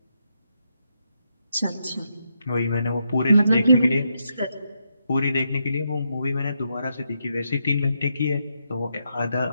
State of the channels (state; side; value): inverted; both; correlation -0.81